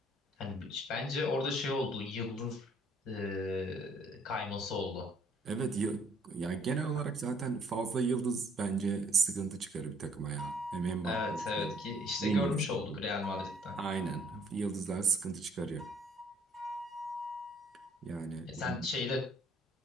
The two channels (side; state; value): both; normal; correlation 0.62